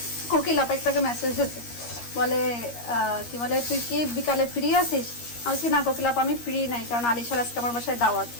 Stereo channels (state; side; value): late; right; 13 ms